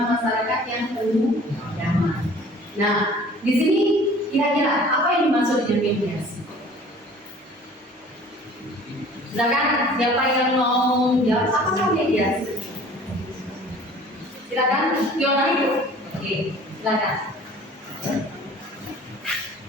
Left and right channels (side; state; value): both; normal; correlation 0.48